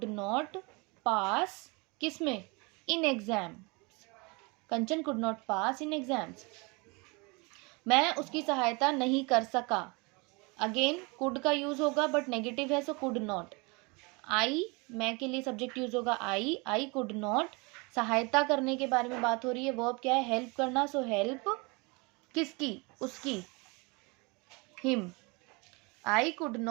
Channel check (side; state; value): left; quieter; 28.3 dB